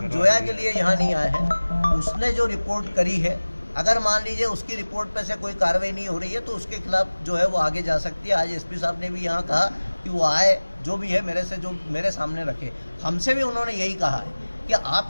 जोया के लिए यहाँ नहीं आए हैं। उसने जो रिपोर्ट करी है, अगर मान लीजिए उसकी रिपोर्ट पे से कोई कार्रवाई नहीं हो रही है तो उसके खिलाफ जो है वो आगे जा सकती है। आज एसपी साहब ने भी यहाँ कहा कि वो आए, जो भी है मेरे सामने रखे। हमसे भी उन्होंने यही कहा है कि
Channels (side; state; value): both; inverted; correlation -1.00